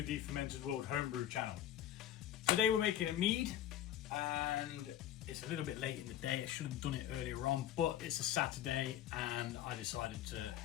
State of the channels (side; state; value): right; quieter; 11.7 dB